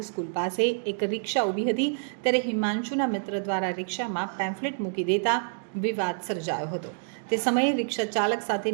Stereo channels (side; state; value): left; silent; digital silence